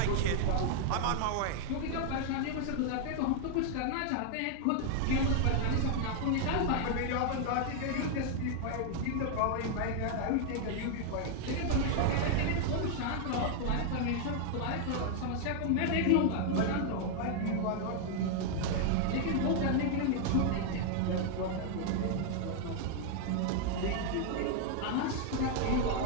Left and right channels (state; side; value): different; both; correlation 0.00